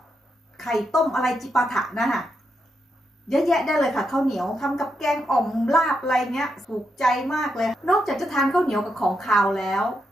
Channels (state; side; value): normal; both; correlation 0.83